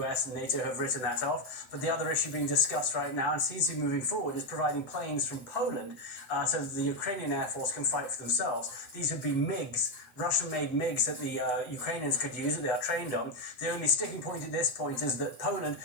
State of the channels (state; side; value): late; right; 7.9 ms